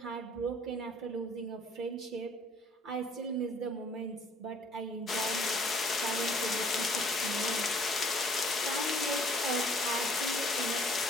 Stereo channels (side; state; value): both; normal; correlation 0.57